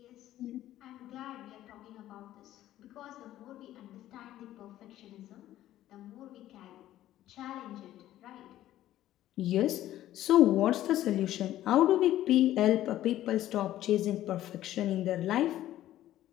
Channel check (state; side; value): quieter; right; 13.5 dB